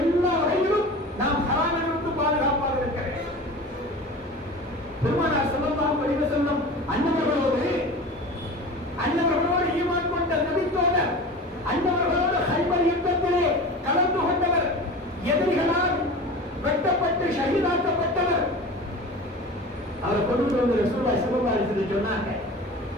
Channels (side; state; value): both; normal; correlation 0.35